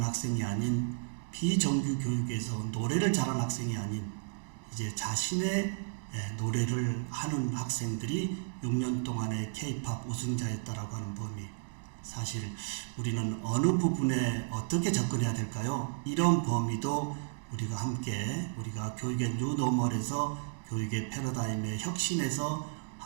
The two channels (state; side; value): silent; left; digital silence